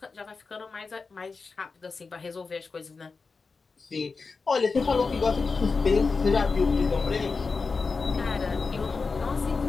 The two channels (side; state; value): right; quieter; 4.5 dB